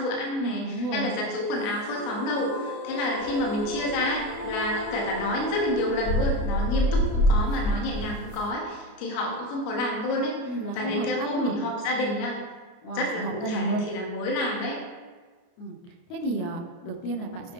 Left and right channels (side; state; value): right; late; 29 ms